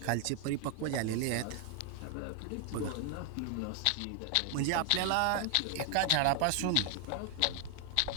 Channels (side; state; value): both; different; correlation 0.00